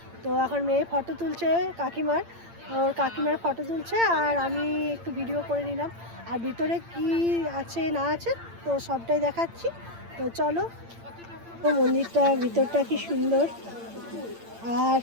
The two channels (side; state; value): left; late; 8.8 ms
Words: তো এখন মেয়ে ফটো তুলছে কাকিমার, ওর কাকিমার ফটো তুলছে, আর আমি একটু ভিডিও করে নিলাম। আর ভিতরে কি আছে না আছে তো সবটাই দেখাচ্ছি। তো চলো। তো মন্দিরটা ভিতরটা কি সুন্দর, আর